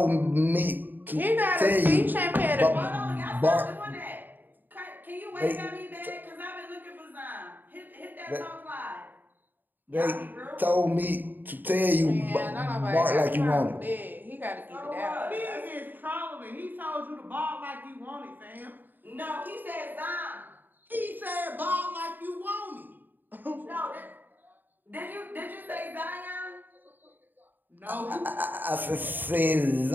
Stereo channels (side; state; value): left; late; 0.090 ms